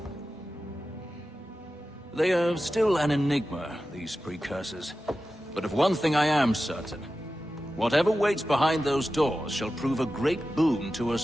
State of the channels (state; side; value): normal; both; correlation 0.93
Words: They are still an enigma, these precursors. But of one thing I am certain. Whatever waits behind those doors shall prove a great boon to